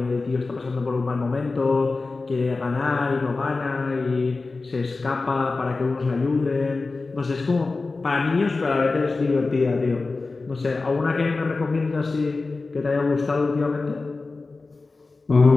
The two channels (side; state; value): right; quieter; 3.7 dB